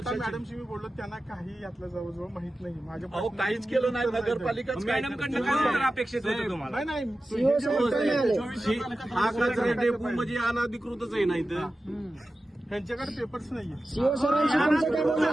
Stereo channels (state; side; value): normal; both; correlation 0.94